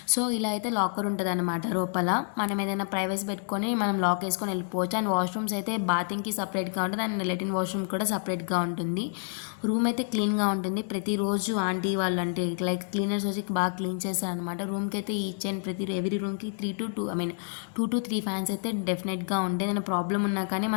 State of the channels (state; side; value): silent; right; digital silence